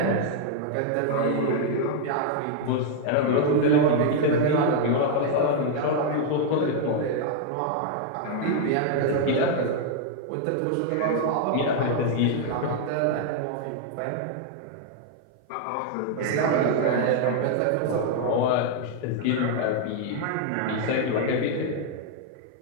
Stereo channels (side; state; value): both; different; correlation 0.00